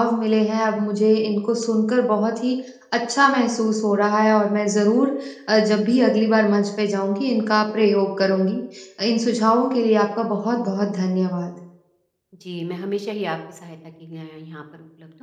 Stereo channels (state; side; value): identical; both; correlation 1.00